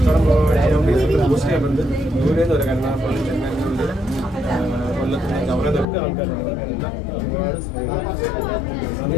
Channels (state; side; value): drops out; right; at 5.9 s